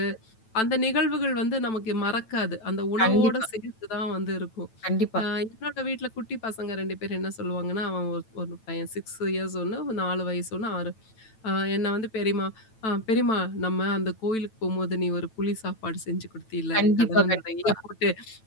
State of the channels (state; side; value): late; right; 9.0 ms